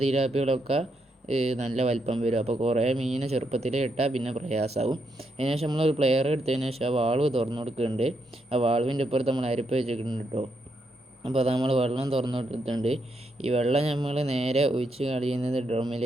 തിലാപ്പികളൊക്കെ നല്ല വലിപ്പം വരും. അപ്പോൾ കുറേ മീനെ ചെറുപ്പത്തിലേ ഇട്ടാൽ പിന്നെ പ്രയാസമാവും. അതിന് ശേഷം നമ്മളൊരു പ്ലെയർ എടുത്തതിന് ശേഷം ആ വാൾവ് തുറന്നു കൊടുക്കുന്നുണ്ട്. ആ വാൾവിൻ്റെ ഇപ്പുറത്ത് നമ്മൾ അരിപ്പ് വെച്ചിട്ടുണ്ട് കേട്ടോ. അപ്പോൾ അത് നമ്മൾ വെള്ളം തുറന്നു കൊടുത്തിട്ടുണ്ട്. ഈ വെള്ളം നമ്മൾ നേരെ ഒഴിച്ച് കളയുന്നത്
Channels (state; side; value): normal; both; correlation 0.79